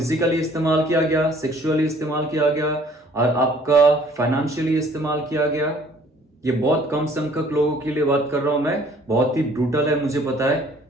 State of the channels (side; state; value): both; normal; correlation 0.57